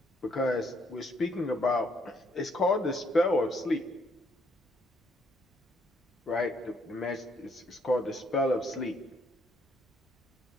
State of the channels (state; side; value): normal; both; correlation 0.69